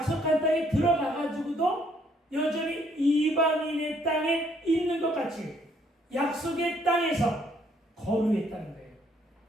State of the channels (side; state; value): both; normal; correlation 0.67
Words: 땅에 들어가가지고도 여전히 이방인의 땅에 있는 것 같이 약속의 땅에서 거류했다는 거예요.